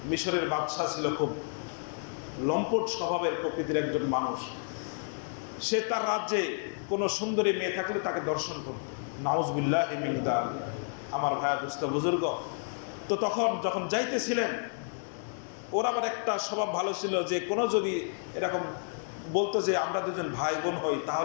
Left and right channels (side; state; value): right; silent; 57 dB below the other